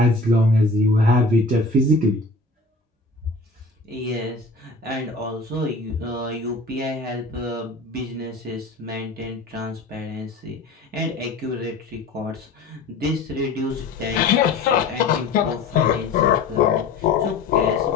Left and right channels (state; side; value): quieter; right; 3.5 dB